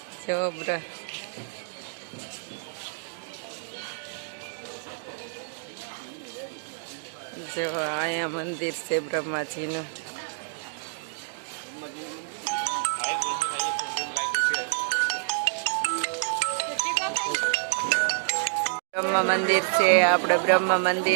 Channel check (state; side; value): silent; left; digital silence